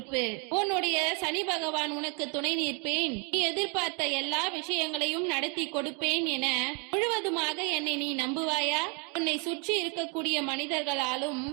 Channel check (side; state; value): left; quieter; 34.5 dB